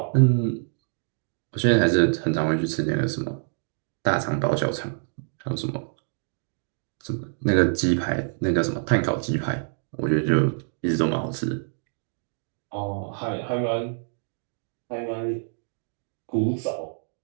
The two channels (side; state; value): left; silent; digital silence